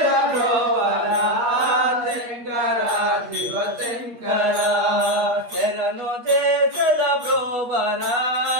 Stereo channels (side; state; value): left; late; 8.4 ms